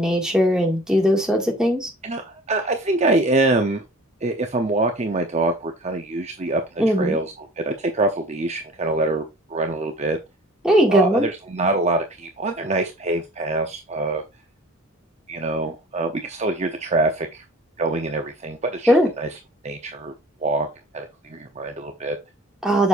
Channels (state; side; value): normal; both; correlation 0.46